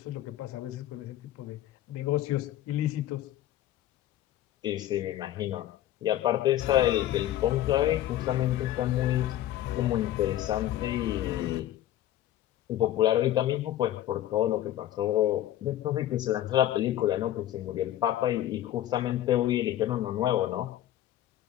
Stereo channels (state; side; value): quieter; right; 13.1 dB